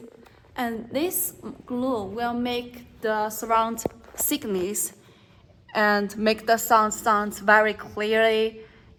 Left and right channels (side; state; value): both; identical; correlation 1.00